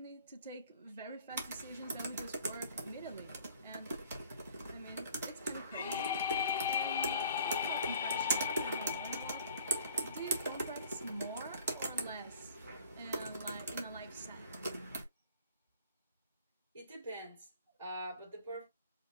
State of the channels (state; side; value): inverted; both; correlation -0.53